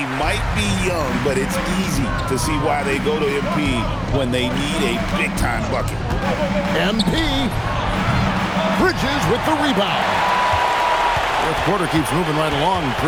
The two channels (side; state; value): both; identical; correlation 1.00